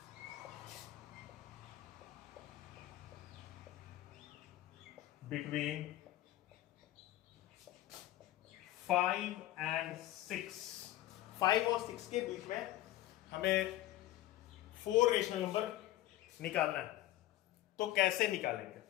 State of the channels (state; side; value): quieter; right; 14.9 dB